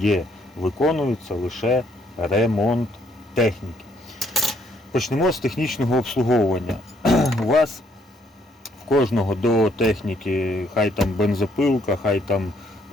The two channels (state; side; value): normal; both; correlation 0.69